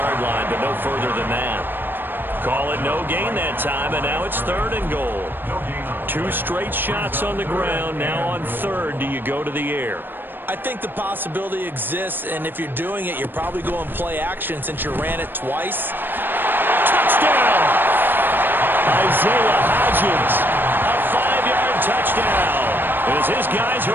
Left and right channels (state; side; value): late; left; 0.095 ms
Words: line, but no further than that. Call it no gain that time, and now it's 3rd and goal. 2 straight shots on the ground. Now on 3rd, do you go to the air? I think the possibility exists, and if you're doing it, you're probably going play action since you ran it twice. Touchdown! Isaiah Hodgins, a 5-yard touchdown. As his guys